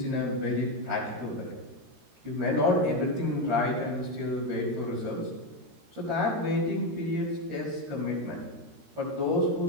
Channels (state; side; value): late; left; 13 ms